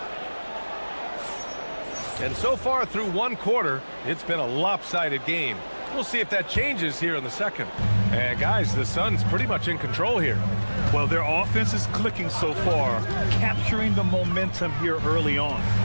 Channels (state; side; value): inverted; both; correlation -1.00